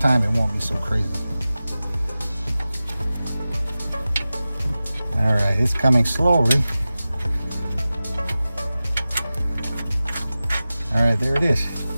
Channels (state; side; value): inverted; both; correlation -0.96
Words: it won't be so crazy. All right, it's coming slowly. All right, there it is.